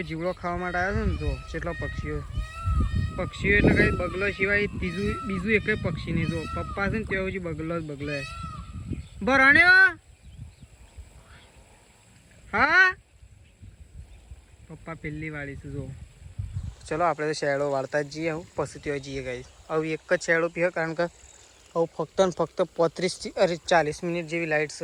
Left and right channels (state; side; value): identical; both; correlation 1.00